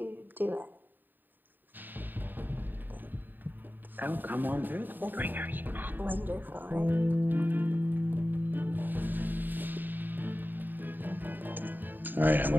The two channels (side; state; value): left; late; 0.091 ms